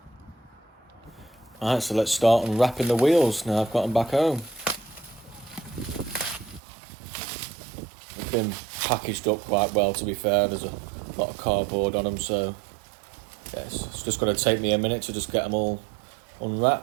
Alright, so let's start unwrapping the wheels now I've got them back home. They've been packaged up quite well, to be fair. There's a lot of cardboard on them, so yes, it's just going to take me a minute to just get them all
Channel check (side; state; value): left; drops out; at 6.6 s